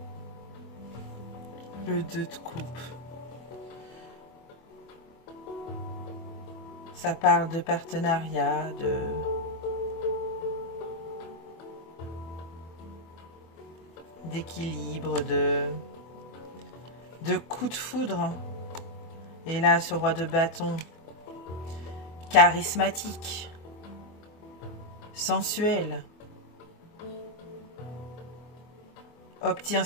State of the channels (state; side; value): late; right; 24 ms